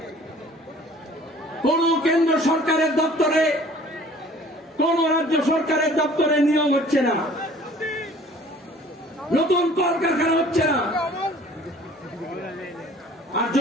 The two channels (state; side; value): normal; both; correlation 0.51